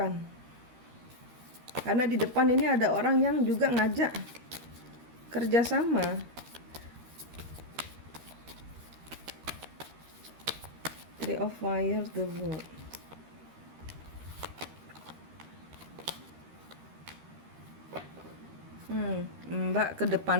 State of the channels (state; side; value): late; left; 13 ms